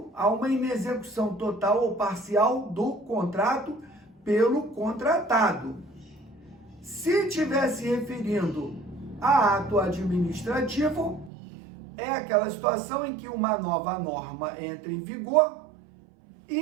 a uma inexecução total ou parcial do contrato pelo contratado. Se estiver se referindo a ato administrativo, é aquela situação em que uma nova norma entra em vigor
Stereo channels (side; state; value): left; drops out; at 11.3 s